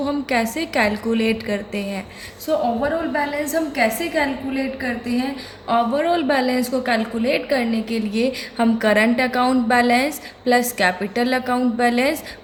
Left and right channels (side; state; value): both; identical; correlation 1.00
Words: हम कैसे कैलकुलेट करते हैं। सो ओवरऑल बैलेंस हम कैसे कैलकुलेट करते हैं? ओवरऑल बैलेंस को कैलकुलेट करने के लिए हम current account balance plus capital account balance